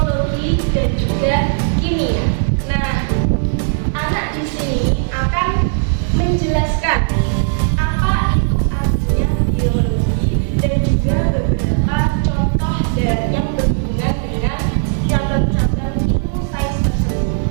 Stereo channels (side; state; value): left; silent; 62 dB below the other